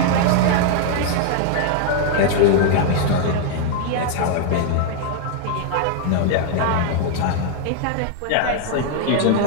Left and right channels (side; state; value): both; different; correlation 0.00